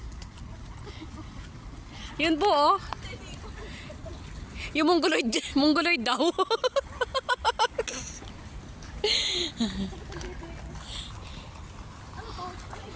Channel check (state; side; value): identical; both; correlation 1.00